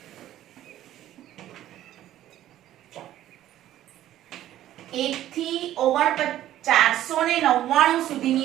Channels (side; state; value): left; quieter; 13.1 dB